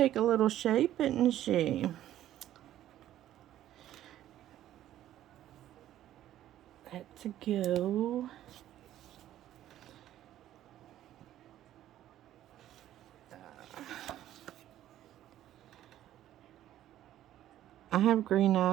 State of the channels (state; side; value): quieter; left; 12.6 dB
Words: a little shape, isn't she? Let's go. I have green